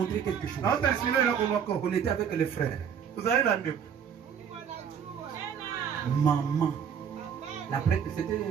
quelque chose. On était avec les frères. Maman. C'était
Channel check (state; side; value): quieter; left; 7.8 dB